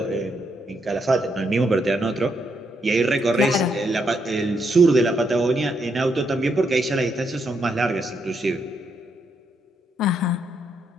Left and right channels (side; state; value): both; normal; correlation 0.78